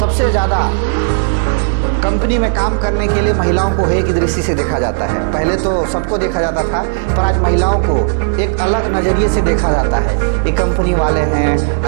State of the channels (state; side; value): silent; left; digital silence